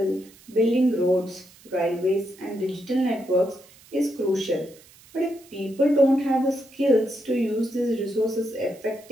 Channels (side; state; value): right; noise; hiss, 25 dB below the sound